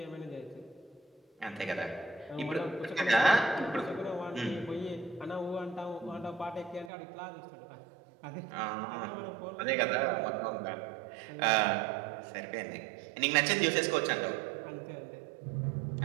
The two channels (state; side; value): drops out; left; at 6.9 s